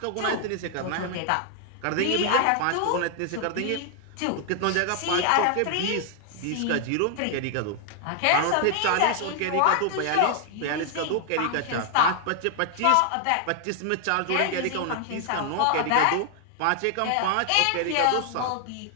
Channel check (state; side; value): different; both; correlation 0.00